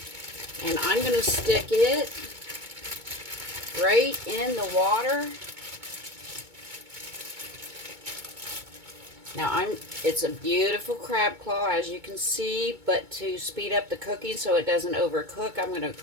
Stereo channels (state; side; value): late; left; 2.2 ms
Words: And I'm going to stick it right in the water. Now, it's a beautiful crab claw, as you can see, but to speed up the cooking so it doesn't overcook, I'm going to